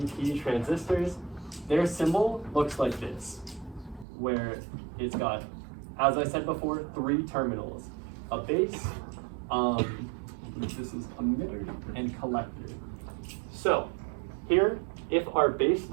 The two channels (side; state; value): left; drops out; at 4.0 s